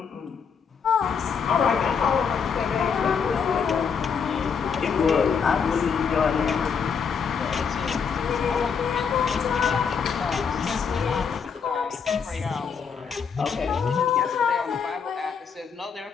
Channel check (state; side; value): quieter; right; 6.4 dB